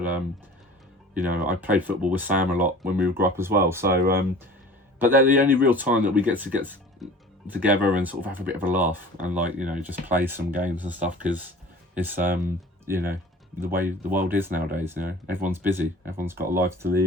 you know, I played football with Sam a lot when we grew up as well. So but they're the only real time that we get together and sort of have a bit of a laugh, and like, you know, just play some games and stuff, because it's you know, the way the world is nowadays. You know, everyone's busy, everyone's got a life to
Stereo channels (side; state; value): both; normal; correlation 0.43